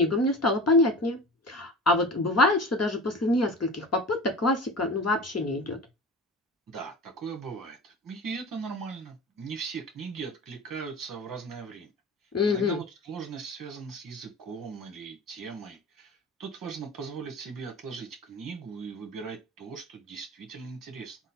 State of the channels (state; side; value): normal; both; correlation 0.34